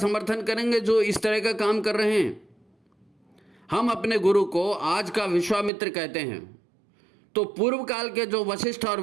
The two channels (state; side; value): drops out; left; at 5.7 s